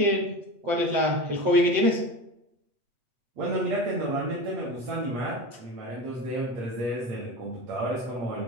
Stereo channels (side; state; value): left; late; 8.2 ms